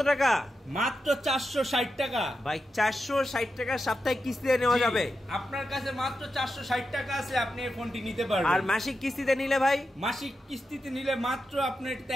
টাকা? মাত্র 460 টাকা ভাই। 460 টাকা সাপ্তাহিক কিস্তিতে নেওয়া যাবে। আপনার কাছে মাত্র 460 টাকা আছে, আপনি এই ফোনটি নিতে পারবেন। আর মাসিক কিস্তিতে নিলে ভাই? মাসিক কিস্তিতে নিলে মাত্র আপনার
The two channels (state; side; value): normal; both; correlation 0.89